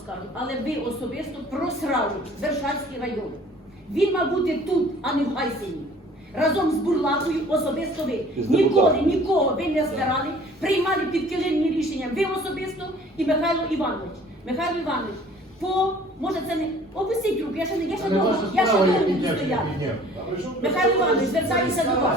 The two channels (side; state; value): both; normal; correlation 0.51